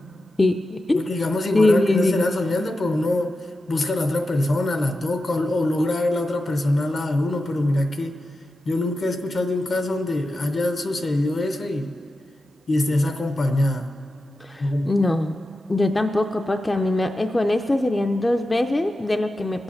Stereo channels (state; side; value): normal; both; correlation 0.91